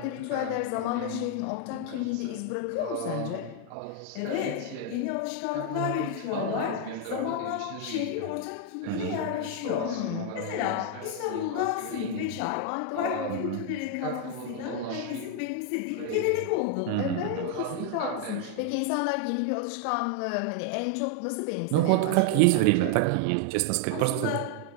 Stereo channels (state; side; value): different; both; correlation 0.00